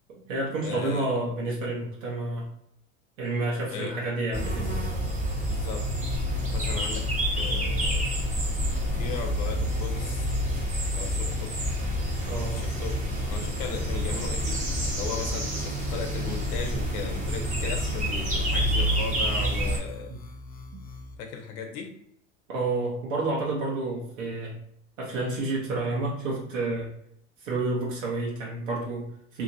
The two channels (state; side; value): normal; both; correlation 0.37